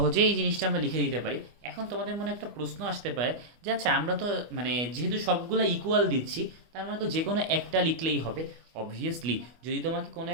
এই জিনিসটা আমরা লিখে দিতে পারি। এখন তোমাদের মনে একটা প্রশ্ন আসতে পারে যে আচ্ছা, আমরা তো মানে যেহেতু সবগুলো ইকুয়াল দিচ্ছি, তার মানে তো যে কোনো একটা লিখলেই হবে। অবভিয়াসলি যদি তোমাকে কোনো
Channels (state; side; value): late; left; 25 ms